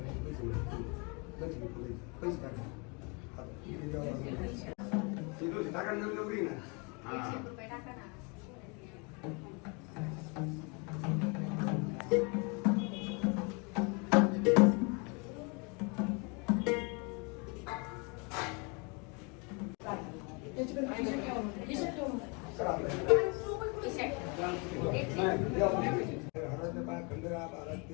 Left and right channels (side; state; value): right; quieter; 31.8 dB